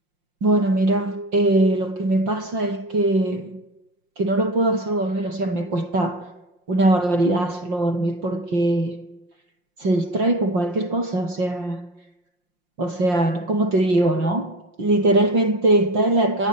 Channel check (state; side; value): late; left; 5.6 ms